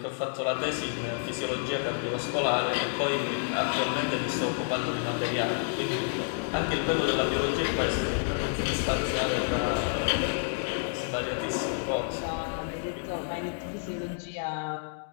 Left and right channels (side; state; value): right; silent; digital silence